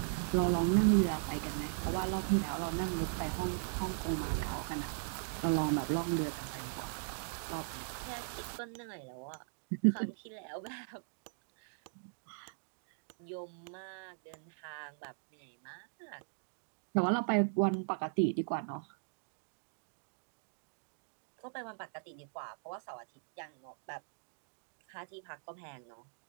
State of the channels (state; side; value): silent; left; digital silence